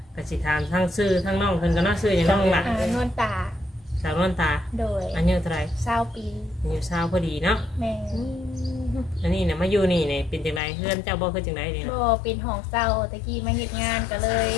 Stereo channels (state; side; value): drops out; right; at 10.6 s